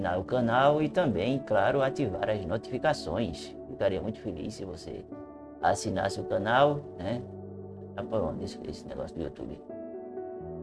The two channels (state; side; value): identical; both; correlation 1.00